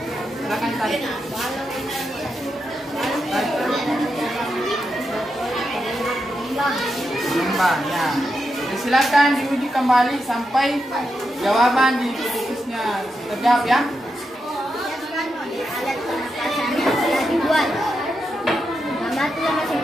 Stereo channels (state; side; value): normal; both; correlation 0.86